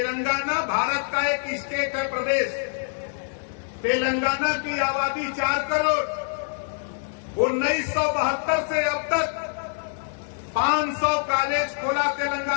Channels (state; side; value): silent; right; digital silence